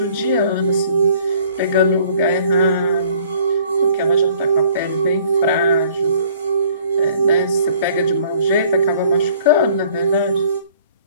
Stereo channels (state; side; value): inverted; both; correlation -0.57